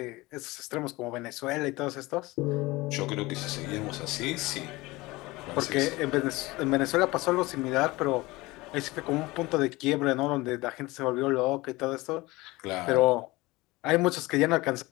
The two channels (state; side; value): quieter; right; 21.2 dB